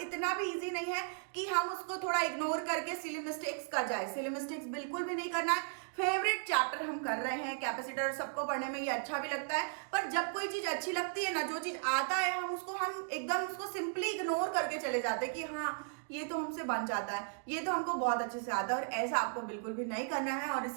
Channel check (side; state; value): left; silent; digital silence